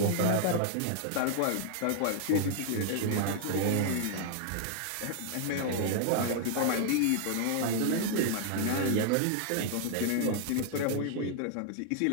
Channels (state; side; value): different; both; correlation 0.00